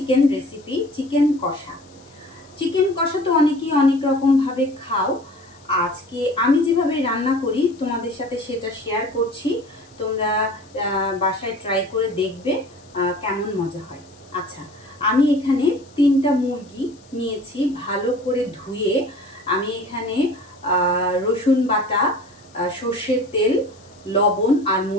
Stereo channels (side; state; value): left; noise; hiss, 28 dB below the sound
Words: রেসিপি, চিকেন কষা। চিকেন কষা তো অনেকেই অনেক রকম ভাবে খাও। আজকে আমি যেভাবে রান্না করি তোমাদের সাথে সেটা শেয়ার করছি। তোমরা বাসায় ট্রাই করে দেখবে কেমন মজা হয়। আচ্ছা, আমি এখানে 3টা মুরগি নিয়েছি, ভালো করে ধুয়ে আমি এখানে রসুন বাটা, সর্ষের তেল, লবণ আর